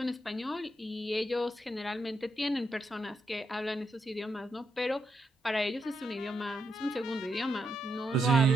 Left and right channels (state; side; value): normal; both; correlation 0.81